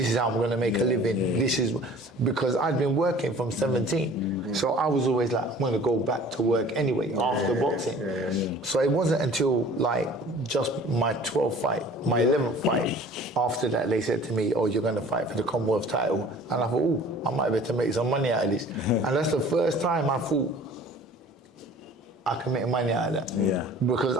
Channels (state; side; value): normal; both; correlation 0.48